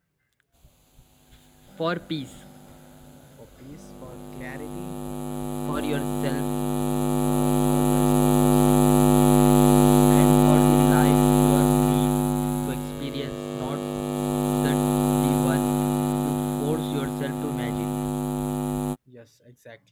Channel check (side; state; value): both; identical; correlation 1.00